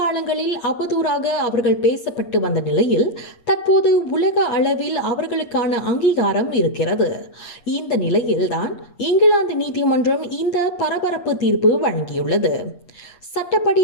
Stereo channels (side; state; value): right; late; 8.5 ms